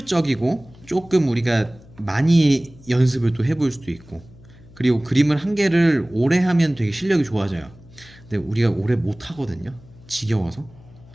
조금 우리가 많이 연습을 또 해볼 수도 있고 그리고 그림을 한 개를 오래 하면 되게 실력이 좋아져요. 근데 우리가 오래 못 하거든요. 지겨워서.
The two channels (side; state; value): left; noise; hum, 23 dB below the sound